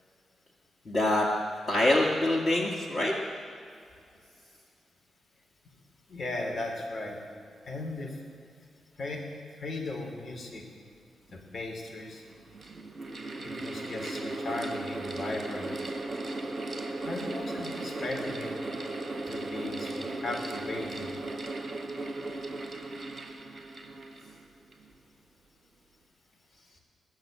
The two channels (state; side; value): normal; both; correlation 0.85